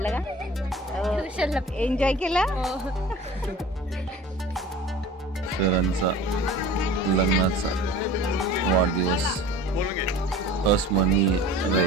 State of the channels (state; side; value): normal; both; correlation 0.41